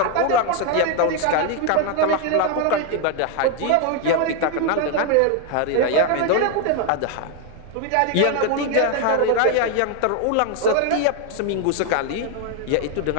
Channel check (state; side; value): different; both; correlation 0.01